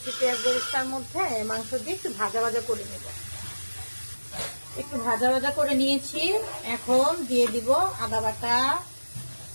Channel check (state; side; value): inverted; both; correlation -1.00